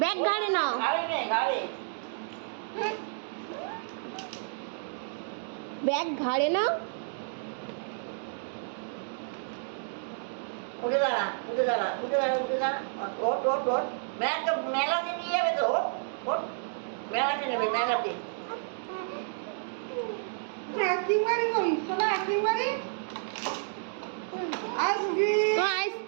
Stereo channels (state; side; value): silent; left; digital silence